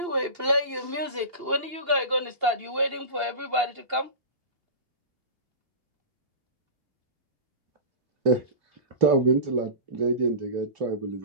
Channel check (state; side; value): late; left; 2.8 ms